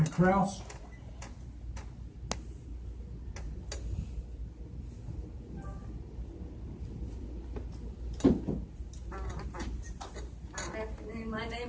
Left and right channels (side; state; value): both; identical; correlation 1.00